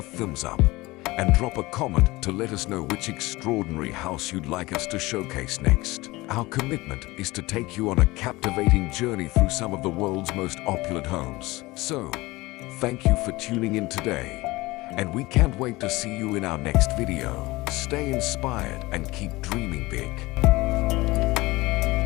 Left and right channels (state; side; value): quieter; right; 21.0 dB